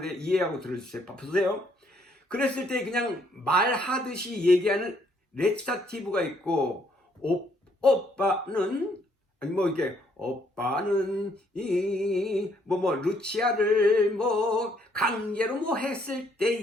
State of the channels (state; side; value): normal; both; correlation 0.68